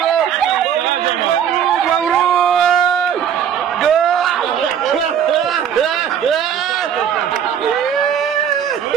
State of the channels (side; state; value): left; quieter; 8.7 dB